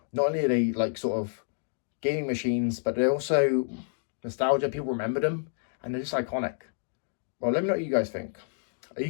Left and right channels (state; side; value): silent; right; digital silence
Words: not only are they like sort of gaming machines, but they're also nostalgia. People remember them, and they're just iconic. Well, let me know what you guys think. Are you